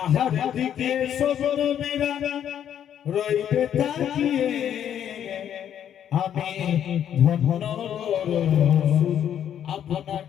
দিকে সব নবীরা রইবে তাকিয়ে আমি ধন্য রসূল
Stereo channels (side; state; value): right; quieter; 9.7 dB